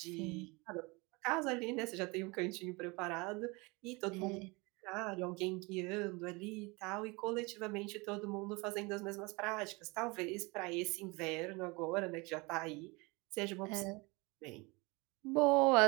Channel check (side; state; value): left; quieter; 26.3 dB